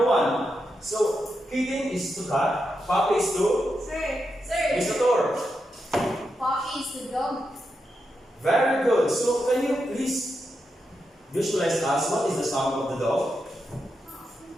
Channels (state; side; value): normal; both; correlation 0.86